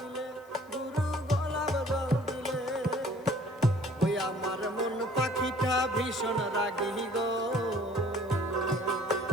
গুরু গোলাপ জল দিলে। ওই আমার মন পাখিটা ভীষণ রাগী গো,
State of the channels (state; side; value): noise; left; hiss, 30 dB below the sound